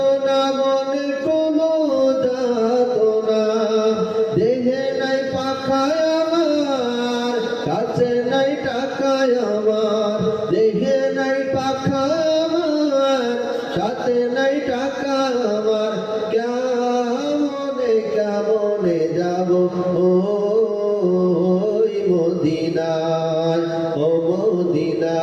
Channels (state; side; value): identical; both; correlation 1.00